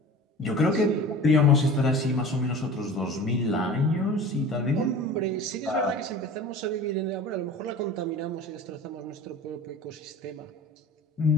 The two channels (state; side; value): normal; both; correlation 0.39